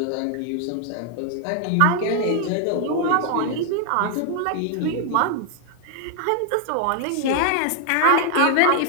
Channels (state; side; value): different; both; correlation 0.00